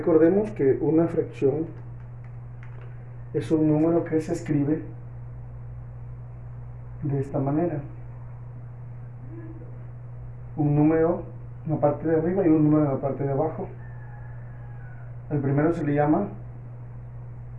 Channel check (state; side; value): identical; both; correlation 1.00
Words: que una fracción es un número que se escribe de esta manera. Un número en la parte de arriba y un número en la parte de abajo. El primero se le llama